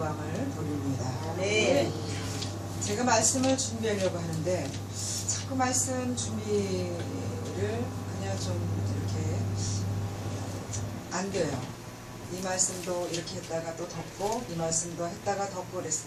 돌립니다. 네. 제가 말씀을 준비하려고 하는데 자꾸 말씀 준비를 그냥 좀 이렇게 안 돼요. 이 말씀도 이렇게 했다가 또 덮고 이 말씀도 했다가 덮고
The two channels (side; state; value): both; identical; correlation 1.00